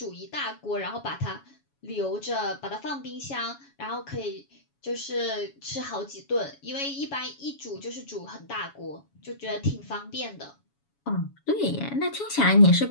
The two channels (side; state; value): right; late; 7.1 ms